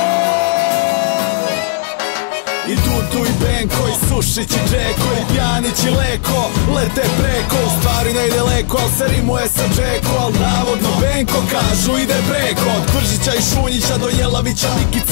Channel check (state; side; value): silent; right; digital silence